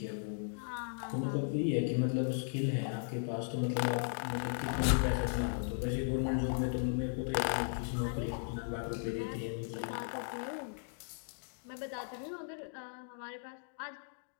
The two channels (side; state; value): right; silent; digital silence